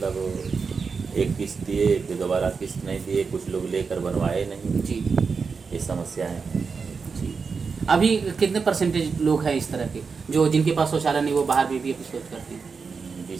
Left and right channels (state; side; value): quieter; left; 5.2 dB